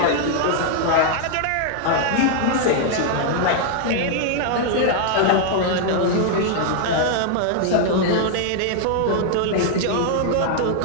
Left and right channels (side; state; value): both; different; correlation 0.00